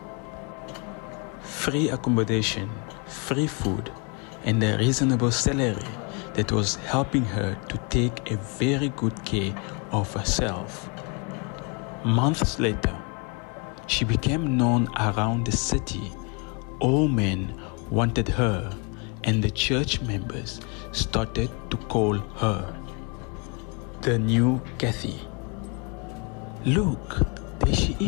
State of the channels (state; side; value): quieter; right; 33.5 dB